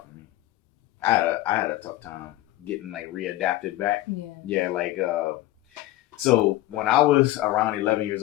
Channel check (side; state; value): right; quieter; 16.3 dB